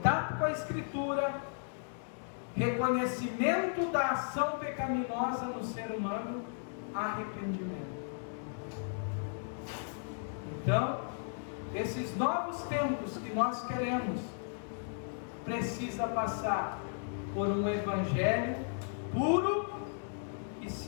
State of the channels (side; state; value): right; silent; digital silence